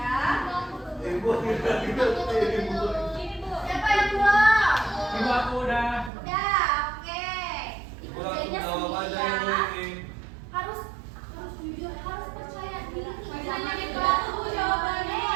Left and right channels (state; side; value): drops out; left; at 6.1 s